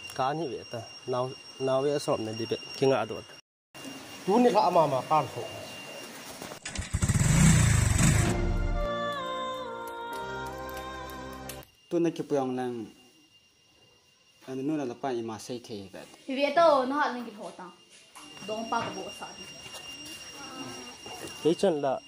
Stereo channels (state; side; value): identical; both; correlation 1.00